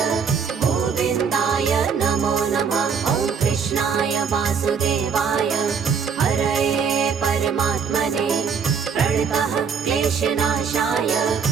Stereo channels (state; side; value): quieter; left; 6.3 dB